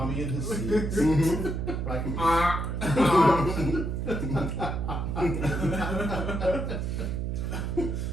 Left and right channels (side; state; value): right; noise; hum, 2 dB below the sound